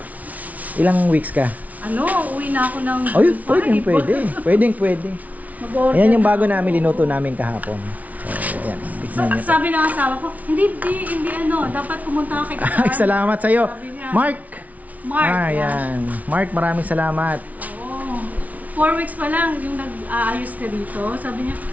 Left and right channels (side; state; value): left; late; 0.072 ms